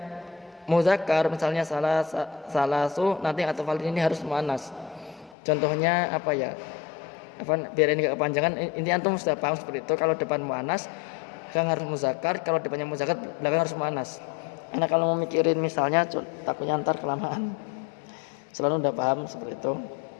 muzakkar, misalnya salasu, nanti atau falin ini harus muannas. Contohnya apa ya? Biar ini gak kepanjangan, ini antum sudah paham seperti itu. Kalau depan muannas, belakang harus muzakkar. Kalau depannya muzakkar, belakang harus muannas. Anak kalau mau mikirin misalnya, takutnya ntar kelamaan. Selalu udah paham seperti itu.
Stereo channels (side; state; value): right; drops out; at 5.4 s